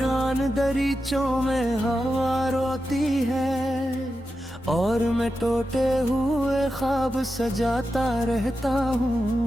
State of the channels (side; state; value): both; normal; correlation 0.90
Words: दरीचों में हवा रोती है और मैं टूटे हुए ख्वाब सजाता रहता